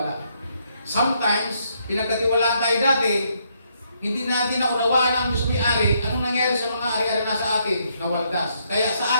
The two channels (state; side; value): inverted; both; correlation -0.74